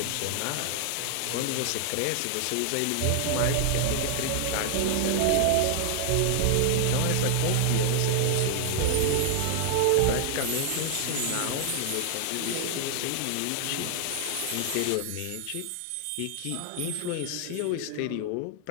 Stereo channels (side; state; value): both; different; correlation 0.00